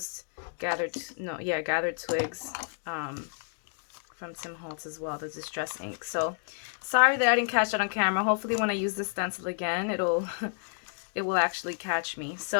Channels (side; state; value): right; silent; digital silence